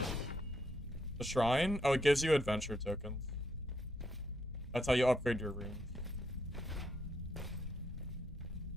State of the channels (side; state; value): both; normal; correlation 0.77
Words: The shrine? Oh, it gives you adventure tokens. That's how you upgrade your runes.